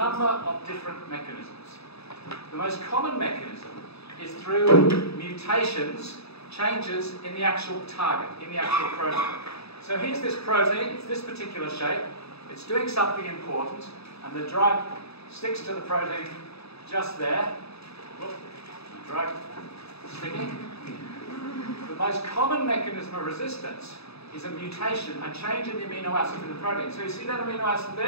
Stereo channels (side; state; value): right; late; 0.78 ms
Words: of different mechanisms. The most common mechanism is through mutations, changes in the actual target, in the actual protein. So here's this protein, it's this particular shape, it's doing something important, and the drug sticks to the protein just there. Whoop, the drug sticking. The most common mechanism of resistance is a mutation, a change in the amino acid in the protein. So you see that amino acid